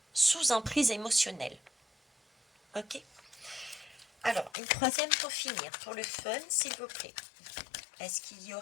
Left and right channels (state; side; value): drops out; right; at 4.5 s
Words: sous emprise émotionnelle. Ok? Alors, une troisième pour finir, pour le fun, s'il vous plaît. Est-ce qu'il y